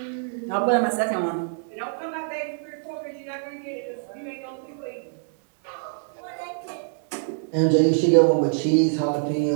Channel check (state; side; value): silent; left; digital silence